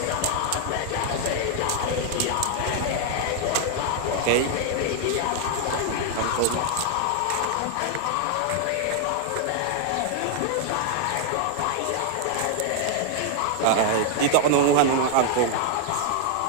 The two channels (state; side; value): different; both; correlation 0.00